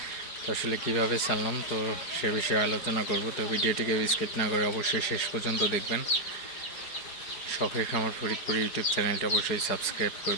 তো আসলে কীভাবে ছাড়লাম তো সে বিষয়ে আলোচনা করব। তো ভিডিওটিকে স্কিপ না করে অবশ্যই শেষ পর্যন্ত দেখবেন। শখের খামার ফরিদপুর ইউটিউব চ্যানেলটি অবশ্যই সাবস্ক্রাইব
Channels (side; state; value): right; late; 4.8 ms